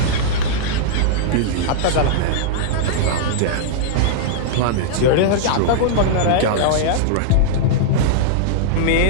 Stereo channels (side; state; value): both; different; correlation -0.02